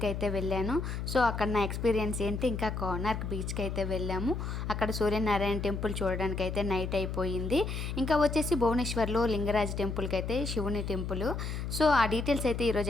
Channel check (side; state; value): left; noise; hum, 4 dB below the sound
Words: అయితే వెళ్ళాను. సో అక్కడ నా ఎక్స్పీరియన్స్ ఏంటి, ఇంకా కోనార్క్ బీచ్కి అయితే వెళ్ళాము. అక్కడ సూర్యనారాయణ టెంపుల్ చూడడానికి అయితే నైట్ అయిపోయింది. ఇంకా వచ్చేసి భువనేశ్వర్లో లింగరాజ్ టెంపుల్కి అయితే శివుని టెంపుల్. సో ఆ డీటెయిల్స్ అయితే